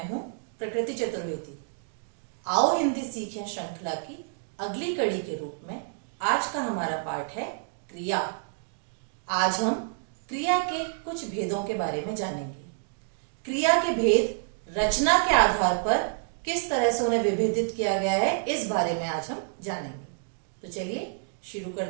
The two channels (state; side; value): silent; left; digital silence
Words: हूं प्रकृति चतुर्वेदी। आओ हिंदी सीखें श्रृंखला की अगली कड़ी के रूप में आज का हमारा पाठ है क्रिया। आज हम क्रिया के कुछ भेदों के बारे में जानेंगे। क्रिया के भेद रचना के आधार पर किस तरह से उन्हें विभेदित किया गया है, इस बारे में आज हम जानेंगे। तो चलिए शुरू